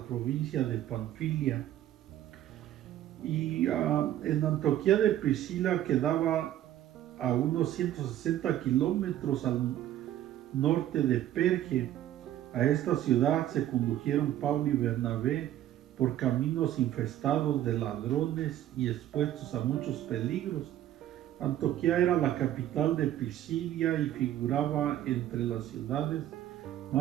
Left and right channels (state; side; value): quieter; left; 12.5 dB